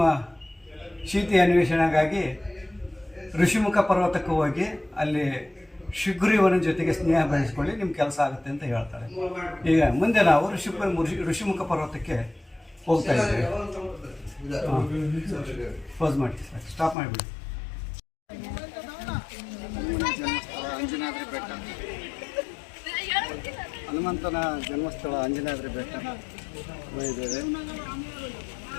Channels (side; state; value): right; drops out; at 16.9 s